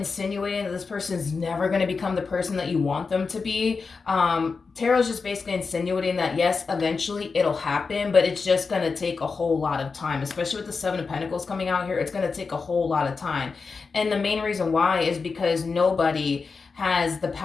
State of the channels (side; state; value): right; quieter; 4.7 dB